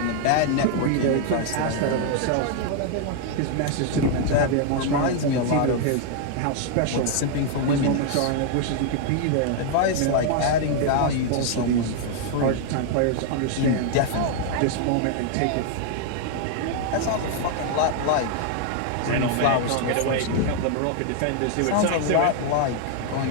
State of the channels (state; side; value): different; both; correlation 0.00